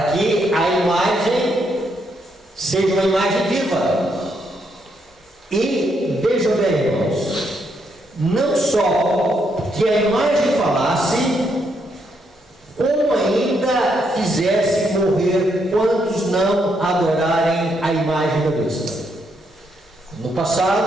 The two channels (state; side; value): normal; both; correlation 0.77